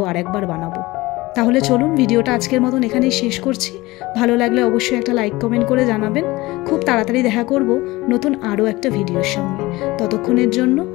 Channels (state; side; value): quieter; right; 20.3 dB